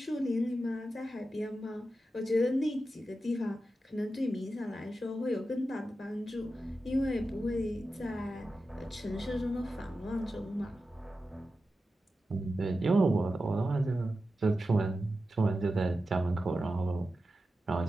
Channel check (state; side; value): normal; both; correlation 0.91